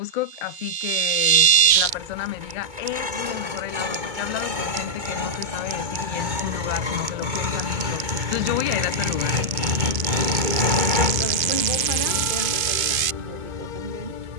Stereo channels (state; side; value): late; left; 2.5 ms